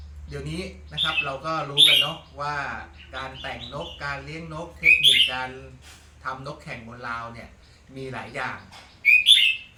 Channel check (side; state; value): both; identical; correlation 1.00